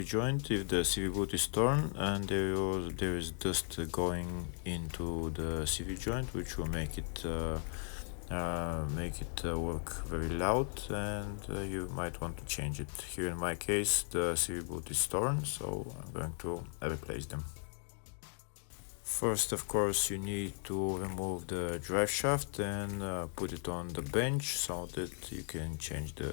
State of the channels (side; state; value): right; silent; 53 dB below the other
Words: joint if the CV boot is torn and there is dust going into the CV joint, which will make it work very loud, and you might want to change it. Here in my case the CV boot is torn, so I'm going to replace them. First, of course, you need to remove the drive shaft and put it on the bench so that you can change